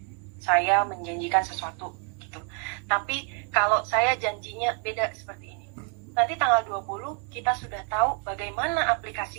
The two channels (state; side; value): quieter; left; 39.0 dB